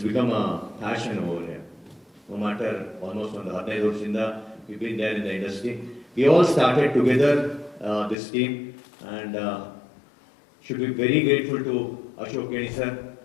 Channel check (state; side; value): drops out; right; at 8.2 s